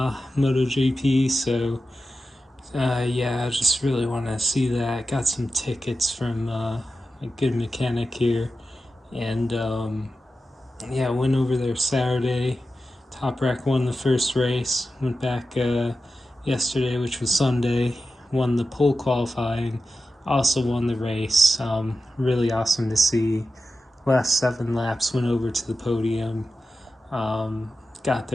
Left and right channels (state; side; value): normal; both; correlation 0.92